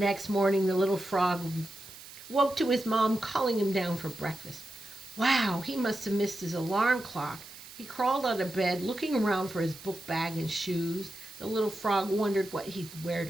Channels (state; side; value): noise; right; hiss, 17 dB below the sound